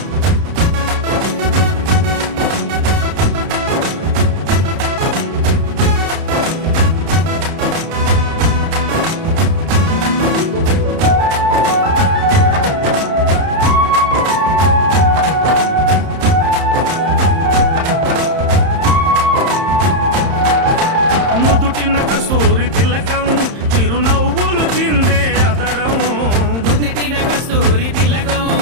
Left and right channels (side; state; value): left; late; 31 ms